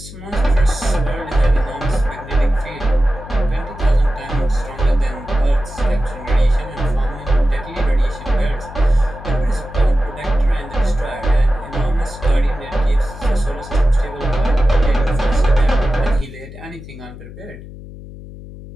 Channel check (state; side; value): noise; left; hum, 15 dB below the sound